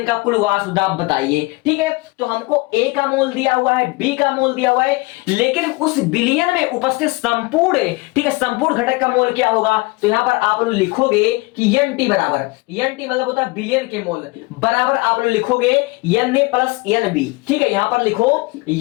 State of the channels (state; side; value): quieter; right; 24.6 dB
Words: का कुल वाष्पदाब बताइए, ठीक है। तो हमको ए का मोल दिया हुआ है, बी का मोल दिया हुआ है, लेकिन उस विलयन में उपस्थित संपूर्ण, ठीक है, संपूर्ण घटक का मोल क्या होगा, तो यहां पर आप लोग लिखोगे कि एन टी बराबर, एन टी मतलब होता है विलयन के मोल, बराबर आप लोग लिखोगे N A plus N B, ठीक है। यहां पर लिखो